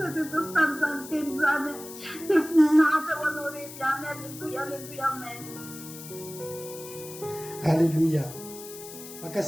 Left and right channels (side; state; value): left; noise; hiss, 14 dB below the sound